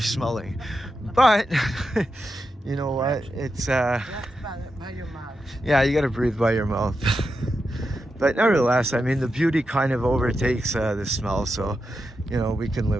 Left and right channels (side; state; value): both; normal; correlation 0.87